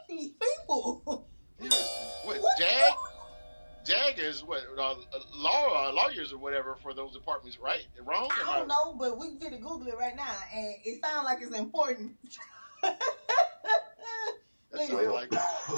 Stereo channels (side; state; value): both; inverted; correlation -1.00